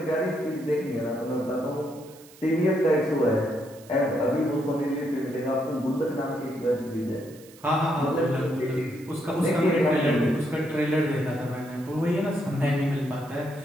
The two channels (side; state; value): right; noise; hiss, 23 dB below the sound